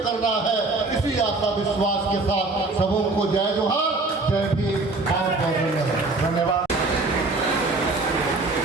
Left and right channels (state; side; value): quieter; left; 3.3 dB